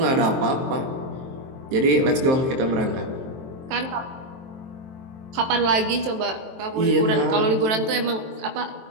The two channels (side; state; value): left; late; 23 ms